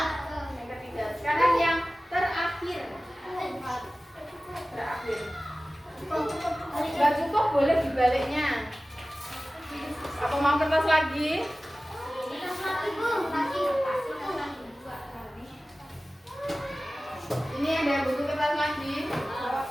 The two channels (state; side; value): normal; both; correlation 0.96